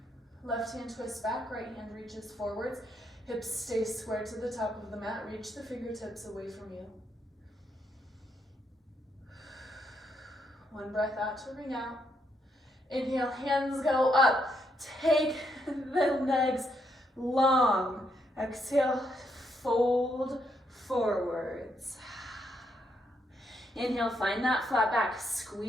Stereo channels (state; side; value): normal; both; correlation 0.76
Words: Left hand twists back, right hand reaches forwards. Hips stay square to the top of the mat. Reach the fingertips away from you. 1 breath out to ring out. Inhale, hands go up. Take the legs long. Exhale, fold forwards. Inhale, find that flat back.